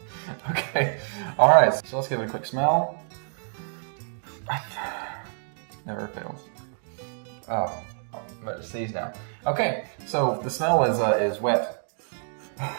Okay, all right. So let's give it a quick smell. Never fails. Oh, I'm about to sneeze now. Okay, so the smell is wet. I'm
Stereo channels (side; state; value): left; silent; 58 dB below the other